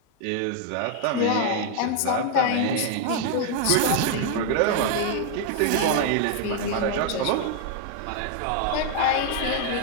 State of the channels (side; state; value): both; different; correlation 0.01